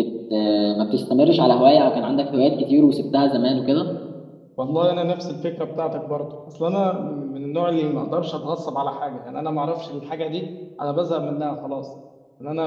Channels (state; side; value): identical; both; correlation 1.00